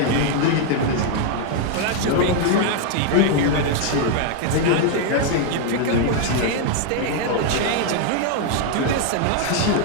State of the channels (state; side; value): different; both; correlation 0.00